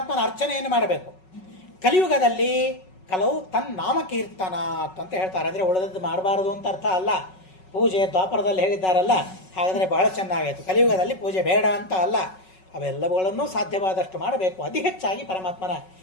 ಅರ್ಚನೆಯನ್ನು ಮಾಡಬೇಕು. ಕಲಿಯುಗದಲ್ಲಿ ಕಲವು ತನ್ನಾಮಕೀರ್ತನ ಅಂತ ಹೇಳ್ತಾರೆ. ಅಂದರೆ ಉಳಿದದ್ದು ಮಾಡಬಾರದು ಅಂತ ಅರ್ಥ ಅಲ್ಲ. ಪೂಜೆ ದ್ವಾಪರದಲ್ಲಿ ಹೇಳಿದ್ದಾರಲ್ಲ, ಹಾಗಾದರೆ ಬಹಳ ಚೆನ್ನಾಗಾಯಿತು. ಕಲಿಯುಗದಲ್ಲಿ ಪೂಜೆ ಬೇಡ ಅಂತ ಅಲ್ಲ, ಅವೆಲ್ಲವುಗಳನ್ನು ಸಾಧ್ಯವಾದಷ್ಟು ಮಾಡಬೇಕು. ಅತಿ ಹೆಚ್ಚಾಗಿ ಪರಮಾತ್ಮನ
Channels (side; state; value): right; late; 5.4 ms